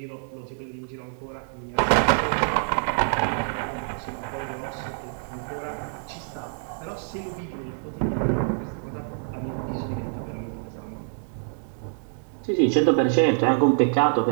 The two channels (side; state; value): left; silent; 61 dB below the other